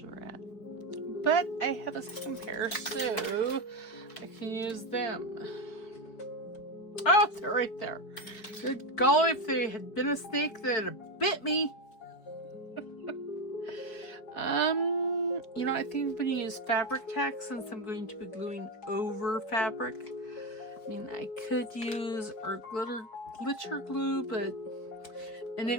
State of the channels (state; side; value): late; right; 4.6 ms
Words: are at. But I have a second pair, so I can use them. Oh, they're right there. Good golly, if they had been a snake, they'd have bit me. You know, I think I'm going to use fabric tack since I'm going to be gluing over fabric. I mean, I could use our glitter glue, and